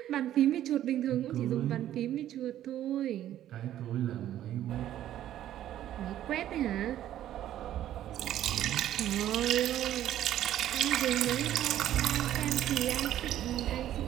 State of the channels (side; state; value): left; quieter; 12.2 dB